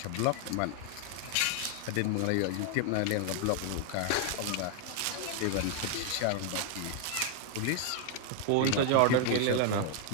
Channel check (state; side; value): different; both; correlation 0.00